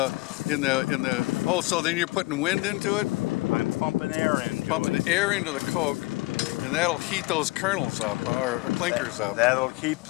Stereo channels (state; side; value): quieter; right; 22.5 dB